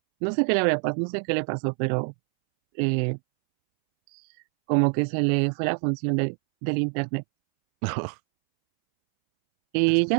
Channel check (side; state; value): left; silent; 62 dB below the other